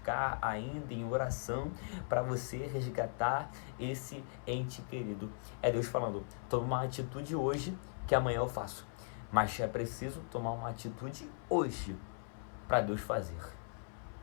ainda em oração para você resgatar esse ente querido. É Deus falando, toma uma atitude hoje que amanhã eu faço. Mas é preciso tomar uma atitude hoje para Deus fazer.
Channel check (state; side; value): silent; right; 52 dB below the other